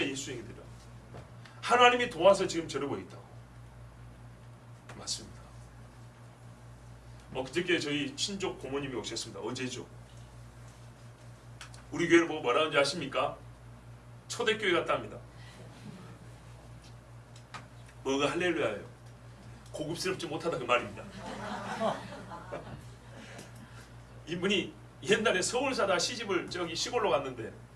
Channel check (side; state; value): both; identical; correlation 1.00